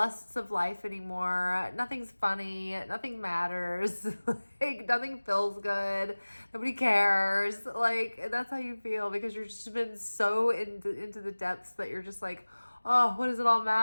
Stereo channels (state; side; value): inverted; both; correlation -1.00